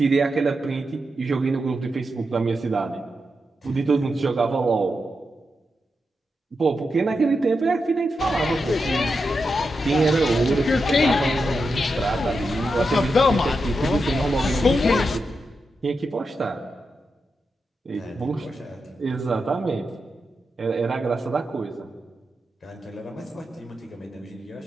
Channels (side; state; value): both; normal; correlation 0.87